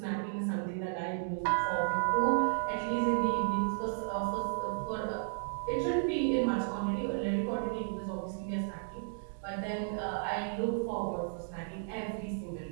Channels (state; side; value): silent; left; digital silence